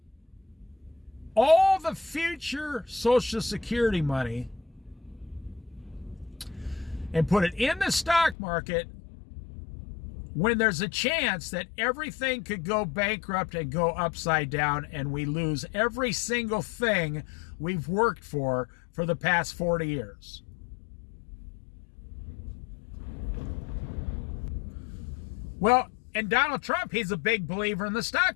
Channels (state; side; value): drops out; right; at 8.3 s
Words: all the future Social Security money and put it in the stock market when there's a chance that everything could go bankrupt and go upside down, and we lose every single thing we've worked for the past 40 years. Well, and Donald Trump, he's a big believer in the